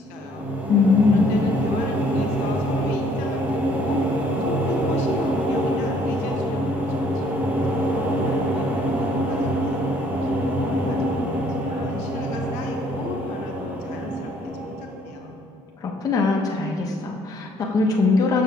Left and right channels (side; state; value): both; normal; correlation 0.62